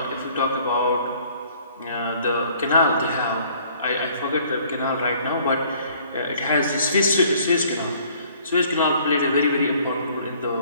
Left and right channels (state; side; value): inverted; both; correlation -0.58